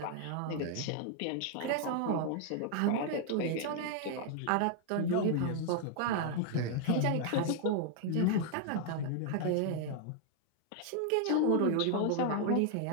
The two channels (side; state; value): both; different; correlation 0.00